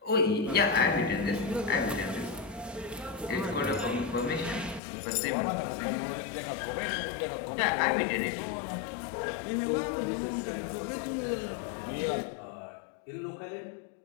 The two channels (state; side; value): drops out; right; at 4.8 s